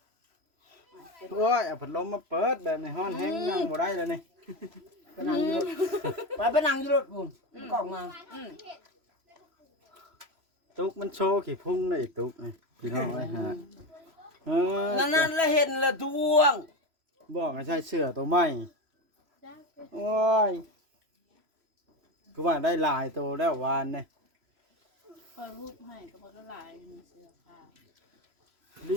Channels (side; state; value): left; late; 3.0 ms